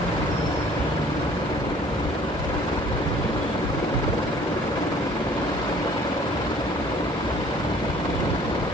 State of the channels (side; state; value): both; normal; correlation 0.54